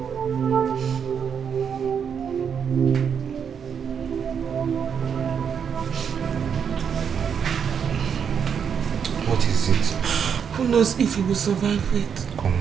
What is it? Who knows if he will survive it?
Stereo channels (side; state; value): left; quieter; 7.3 dB